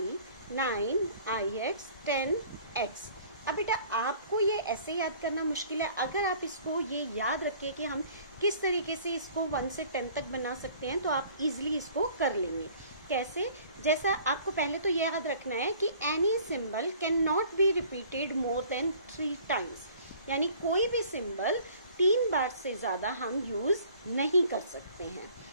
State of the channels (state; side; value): inverted; both; correlation -0.52